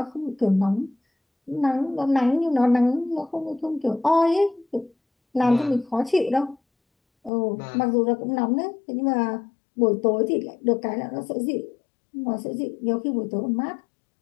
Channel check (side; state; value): right; drops out; at 7.3 s